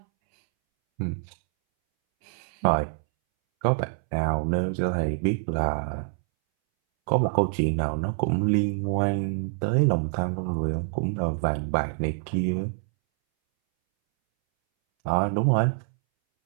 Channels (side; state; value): left; silent; 61 dB below the other